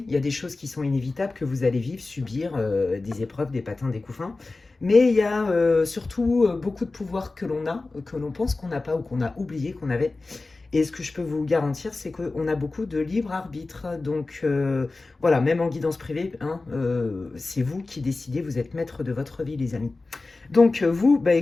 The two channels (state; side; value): quieter; right; 3.5 dB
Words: il y a des choses qui sont inévitables, que vous allez vivre, subir, des épreuves, des patins, des coups fins. Mais il y a surtout beaucoup de pouvoir que l'on a, que l'on pense qu'on n'a pas ou qu'on a oublié qu'on avait. Et ce que je peux vous garantir, c'est qu'on a beaucoup de libre arbitre. Donc voilà, même en guidance privée, hein, c'est vous qui décidez, vous êtes maître de votre vie, les amis. Donc vous,